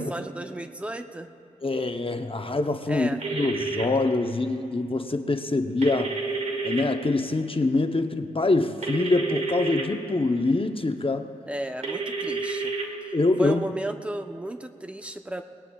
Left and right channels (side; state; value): both; normal; correlation 0.78